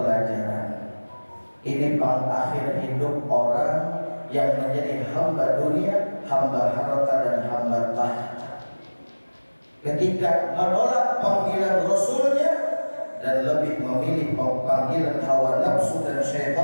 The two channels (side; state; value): both; inverted; correlation -1.00